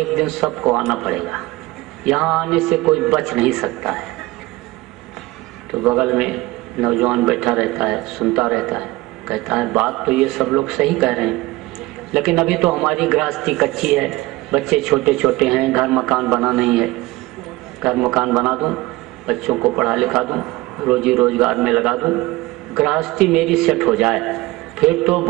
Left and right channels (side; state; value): left; quieter; 19.9 dB